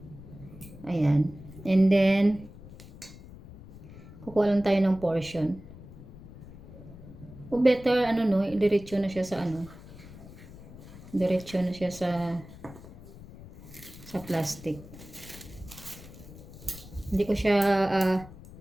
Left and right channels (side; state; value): left; noise; rumble, 17 dB below the sound